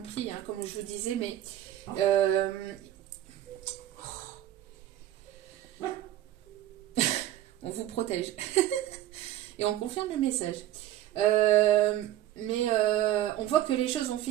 hein, comme je vous disais, mais on vous protège. Et on confirme le message. Mais on voit que les choses vont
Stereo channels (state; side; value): quieter; left; 13.4 dB